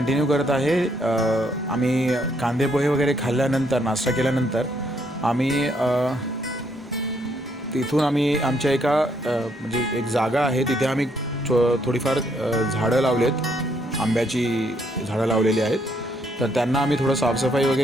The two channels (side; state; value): both; normal; correlation 0.72